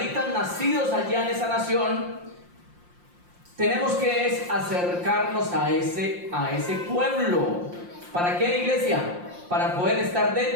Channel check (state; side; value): late; left; 5.7 ms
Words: nacidos allá en esa nación, tenemos que acercarnos a ese pueblo. ¿Para qué, iglesia? Para poder estar